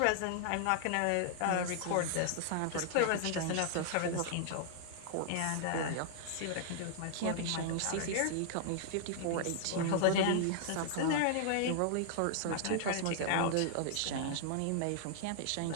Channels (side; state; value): both; different; correlation -0.01